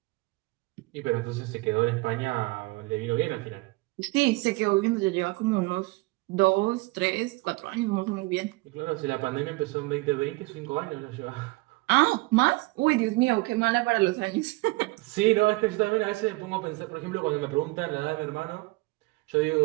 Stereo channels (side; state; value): left; quieter; 22.9 dB